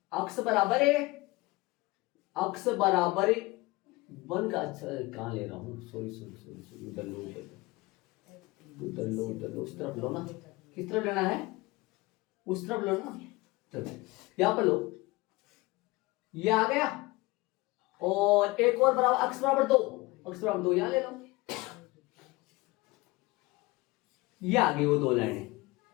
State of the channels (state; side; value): quieter; right; 21.7 dB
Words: अक्ष बराबर है, अक्ष बराबर 1 का, अच्छा कहां ले रहा हूं, सॉरी उधर लो, उस तरफ लो ना, किस तरफ लेना है, उस तरफ लो ना, चलो यहां पर लो, ये आ गया, और एक और बराबर अक्ष बराबर 2 यहां ले लो, ये आ गई वो 2 लाइनें,